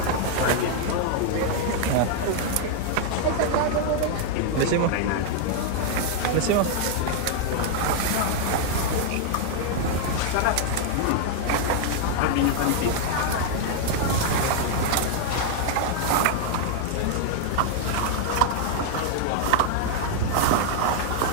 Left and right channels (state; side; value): different; both; correlation 0.00